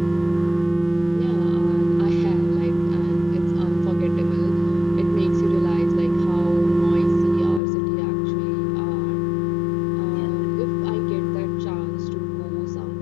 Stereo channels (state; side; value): drops out; right; at 7.6 s